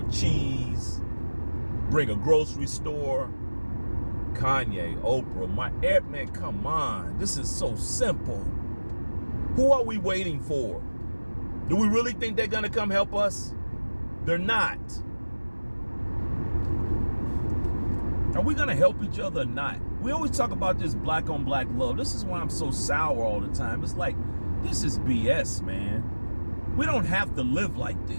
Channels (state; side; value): inverted; both; correlation -1.00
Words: cheese. Bring a grocery store. Kanye, Oprah, man, come on. This is so simple. Who are we waiting for? Do we really think they're gonna come help us? They're not. Are we gonna help each other or not? We always talk about this black on black love. This is why I'm so sour all the time. It's like, this is BS, man. We don't have to live like